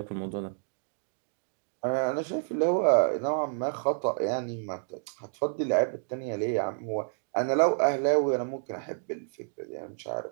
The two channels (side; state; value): left; silent; digital silence